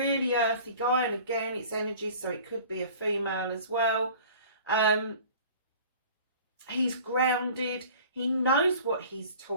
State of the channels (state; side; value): inverted; both; correlation -0.45